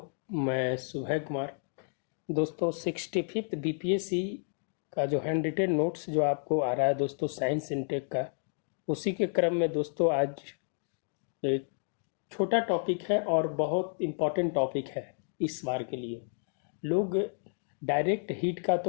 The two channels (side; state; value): right; silent; digital silence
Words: मैं सुबह कुमार। दोस्तों 65th बीपीएससी का जो हैंड रिटेन नोट्स जो आपको आ रहा है दोस्तों साइंस इनटेक का, उसी के क्रम में दोस्तों आज एक छोटा टॉपिक है और बहुत इम्पोर्टेंट टॉपिक है इस बार के लिए। लोग डायरेक्ट हीट का